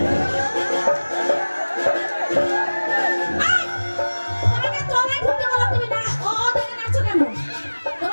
তোমাকে তলায় ঢুকতে বললাম, তুমি না দেখে নাচো কেন?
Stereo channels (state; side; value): inverted; both; correlation -1.00